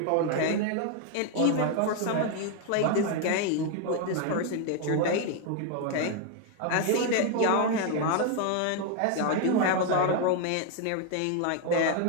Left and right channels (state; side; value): different; both; correlation 0.01